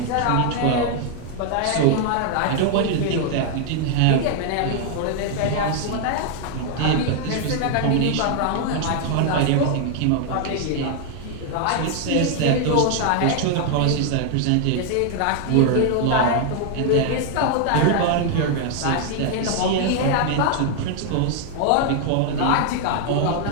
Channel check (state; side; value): different; both; correlation 0.00